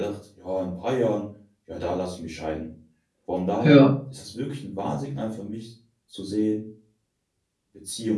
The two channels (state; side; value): identical; both; correlation 1.00